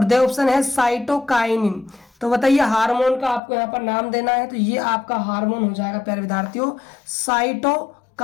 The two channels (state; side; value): drops out; right; at 3.4 s